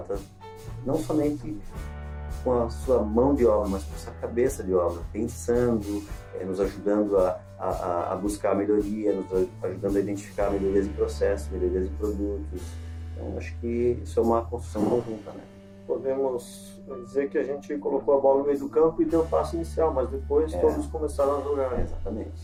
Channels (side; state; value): both; identical; correlation 1.00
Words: não somente com a sua mão de obra, mas com a sua cabeça de obra, pensando, nos ajudando a buscar a melhoria, nos ajudando a identificar melhorias de processo, melhorias de produtos. Então, acho que isso é uma construção conjunta, né? Podemos dizer que a gente colocou a bola no meio do campo e deu o passo inicial, mas depois todos começaram a jogar.